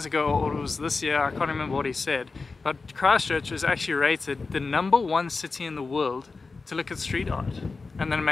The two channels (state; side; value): quieter; right; 4.1 dB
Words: ago, or it was this year, I can't remember what he said, but Christchurch was actually rated the #1 city in the world to look at street art, and then it